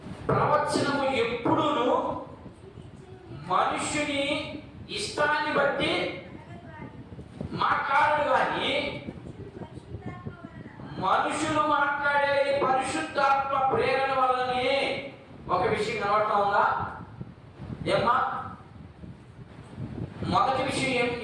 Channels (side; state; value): both; identical; correlation 1.00